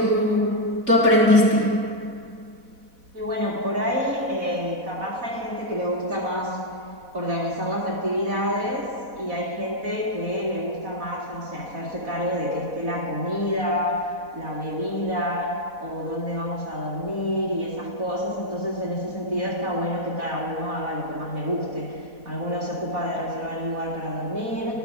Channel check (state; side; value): late; left; 4.1 ms